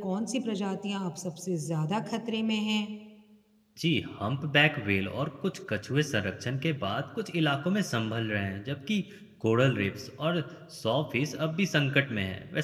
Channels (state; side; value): identical; both; correlation 1.00